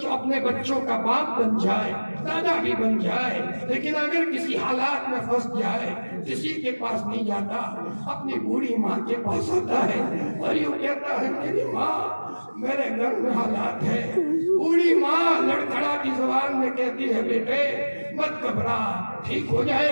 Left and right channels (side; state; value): both; inverted; correlation -1.00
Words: اپنے بچوں کا باپ بن جائے، دادا بھی بن جائے، لیکن اگر کسی حالات میں پھنس جائے، کسی کے پاس نہیں جاتا، اپنی بوڑھی ماں کے پاس آتا ہے اور یوں کہتا ہے میری ماں میرے گھر میں حالات ہے۔ بوڑھی ماں لڑکھڑاتی زبان میں کہتی ہے بیٹے مت گھبرا، ٹھیک ہو